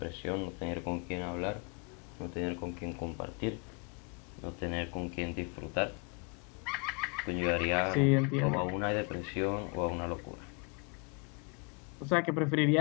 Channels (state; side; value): quieter; right; 34.3 dB